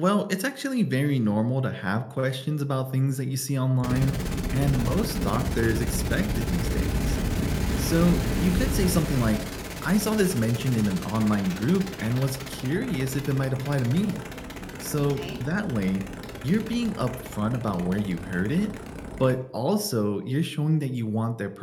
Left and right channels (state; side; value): identical; both; correlation 1.00